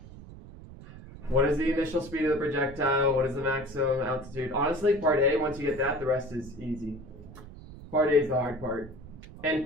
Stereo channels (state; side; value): noise; right; rumble, 16 dB below the sound